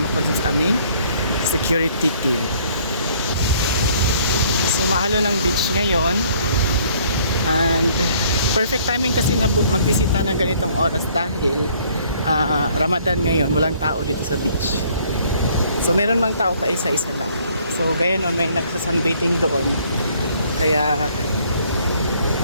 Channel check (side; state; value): both; inverted; correlation -0.60